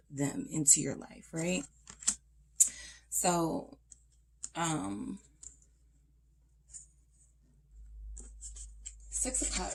them into your life, right? So, Six of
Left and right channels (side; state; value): both; identical; correlation 1.00